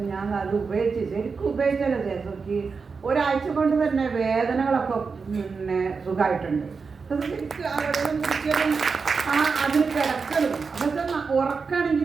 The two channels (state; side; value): quieter; left; 5.0 dB